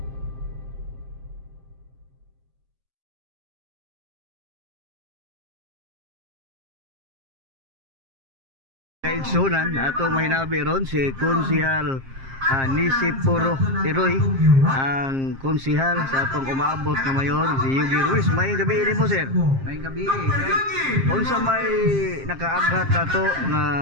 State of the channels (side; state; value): left; late; 7.5 ms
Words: Kaigsunan ato mahinabi ron si Konsihal Nisi Puro Tiroy, ang konsihal sa atong umaabot na mayor si Yugi Ruiz. May gabi ni mo, sir. May gabi, right? Unsa may nakaaghat nato